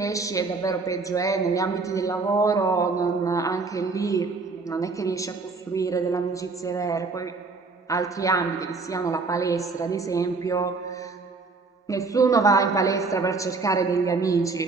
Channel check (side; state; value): left; quieter; 4.1 dB